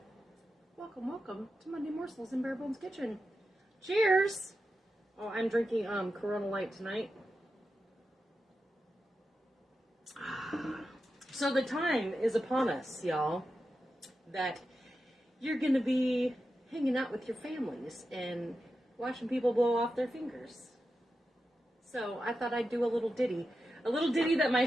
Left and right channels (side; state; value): both; normal; correlation 0.90